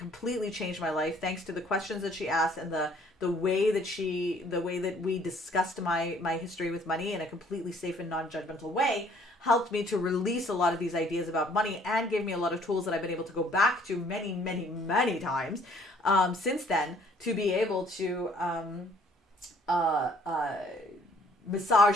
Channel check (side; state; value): both; normal; correlation 0.60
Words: changed my life thanks to the questions that she asked and the way that we discussed my history with money in a completely safe and non-judgmental way helped me to release a lot of these ideas about money and gave me a lot of tools that I've been able to go back to many times since then to be able to